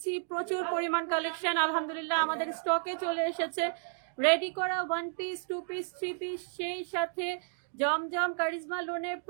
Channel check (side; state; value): left; silent; digital silence